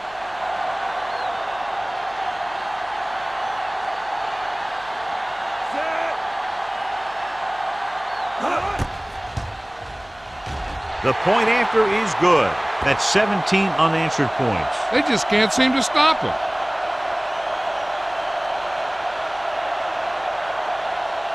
The point after is good. That's 17 unanswered points. They just can't seem to stop him.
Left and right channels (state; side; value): noise; right; hum, 28 dB below the sound